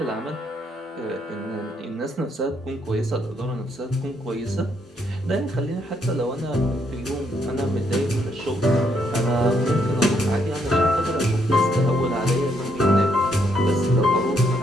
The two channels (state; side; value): normal; both; correlation 0.74